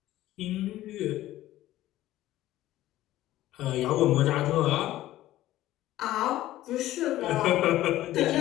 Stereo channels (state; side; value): quieter; right; 14.9 dB